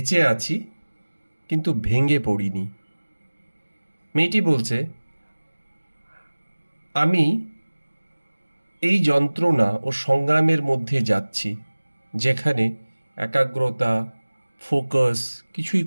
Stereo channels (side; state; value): both; inverted; correlation -1.00